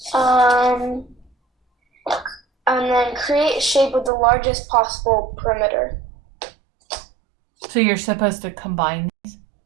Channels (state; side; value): drops out; left; at 4.1 s